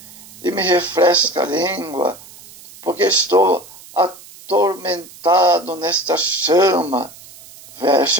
e me refresca a língua, porque estou atormentado nesta chama.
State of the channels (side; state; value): right; noise; hiss, 20 dB below the sound